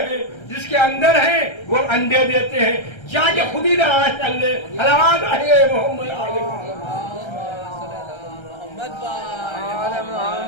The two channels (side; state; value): right; late; 1.3 ms